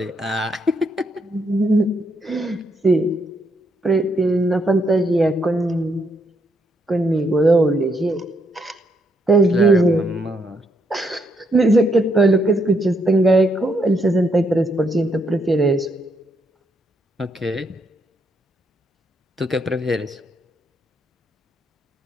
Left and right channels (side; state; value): both; normal; correlation 0.76